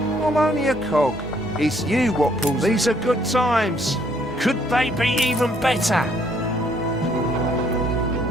I'm only a cog. It's you what pulls. These are good times. Could they be even better?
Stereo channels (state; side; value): normal; both; correlation 0.66